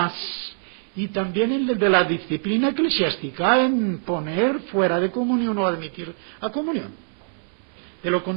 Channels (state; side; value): silent; left; 63 dB below the other